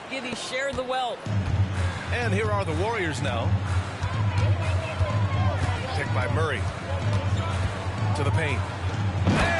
Giddey share the wealth. And here are the Warriors now. Picked by Murray. To the paint.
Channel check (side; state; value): both; identical; correlation 1.00